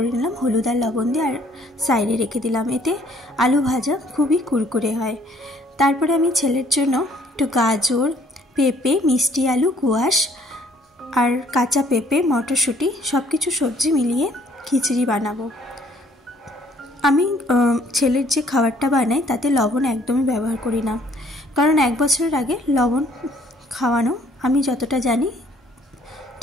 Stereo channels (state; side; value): normal; both; correlation 0.61